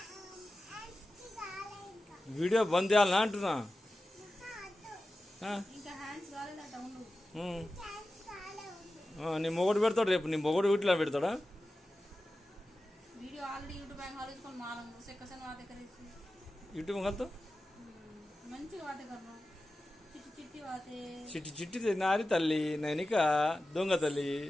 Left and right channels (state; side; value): normal; both; correlation 0.94